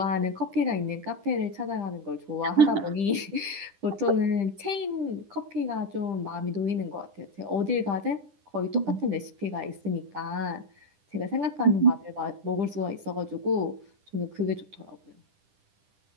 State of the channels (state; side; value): late; left; 10 ms